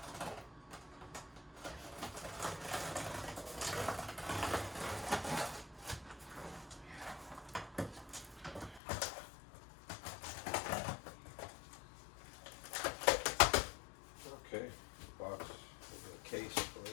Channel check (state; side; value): drops out; right; at 8.8 s